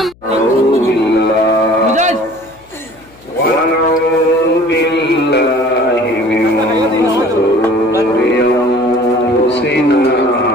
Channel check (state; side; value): noise; left; hum, 29 dB below the sound